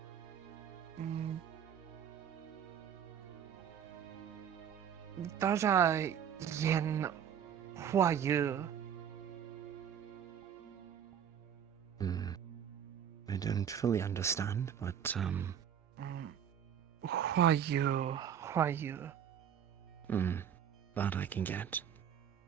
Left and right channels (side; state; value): left; quieter; 8.8 dB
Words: Daja yen hua yu. I don't fully understand, but, Hua yu, hua yu. that I can get.